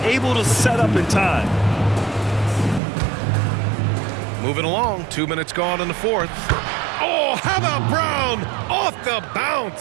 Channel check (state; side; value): drops out; left; at 2.8 s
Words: able to set up in time. Moving along. 2 minutes gone in the 4th. Oh, how about Brown? Off the